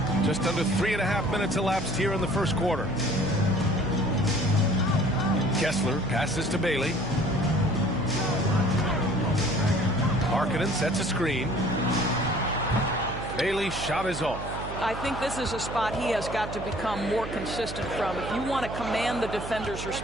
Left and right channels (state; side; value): noise; right; hum, 9 dB below the sound